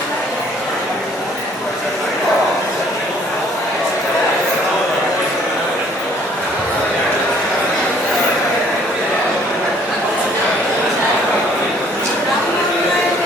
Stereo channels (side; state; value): both; normal; correlation 0.60